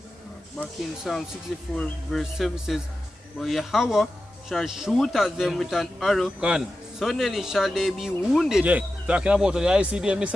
Back in Psalm 64 verse 7 says, but Yahweh shall shoot at them with an arrow. Gone. Suddenly shall they be wounded. Yeah, talking about the ICBM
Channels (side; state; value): both; normal; correlation 0.92